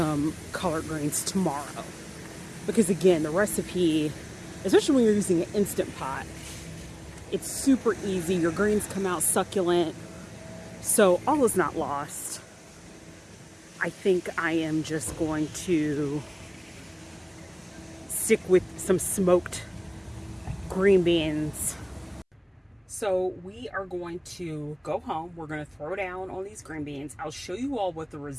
collard greens tomorrow. Because again, the recipe, especially when you're using an Instant Pot, it's super easy. Your greens come out succulent. So all is not lost. I think I am just going to stick with some smoked green beans. So we are going to go home. We're going to throw down on these green beans. I'll show you all what the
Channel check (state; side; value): identical; both; correlation 1.00